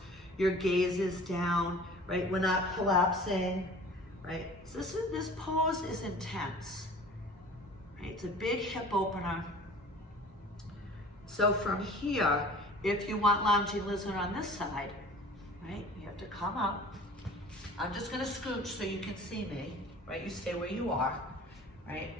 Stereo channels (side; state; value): both; normal; correlation 0.45